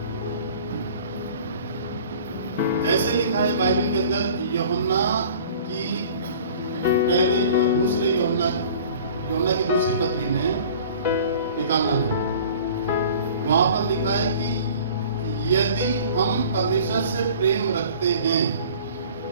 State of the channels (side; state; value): both; inverted; correlation -0.46